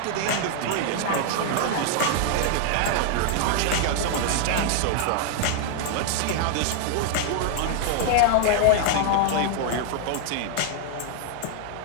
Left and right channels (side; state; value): both; different; correlation 0.00